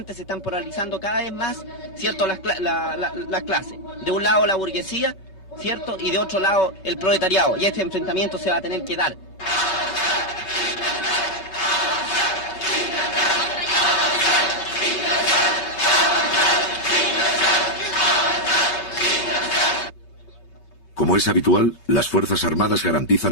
se están polarizando cada vez más, ¿cierto?, las clases. De un lado la burguesía, ¿cierto?, y de otro lado el proletariado. Y este enfrentamiento se va a tener que dar. Como es habitual, las Fuerzas Armadas garantizan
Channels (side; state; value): right; late; 5.3 ms